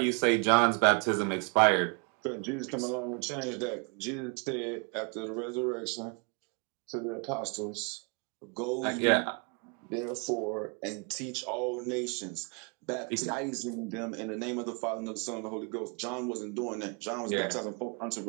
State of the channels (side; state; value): left; quieter; 35.5 dB